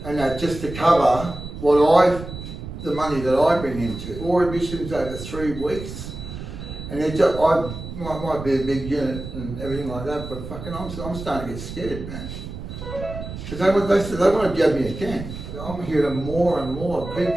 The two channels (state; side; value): noise; right; rumble, 9 dB below the sound